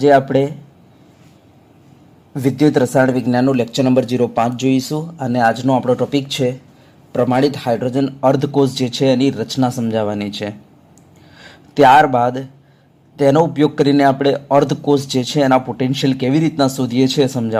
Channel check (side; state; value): both; identical; correlation 1.00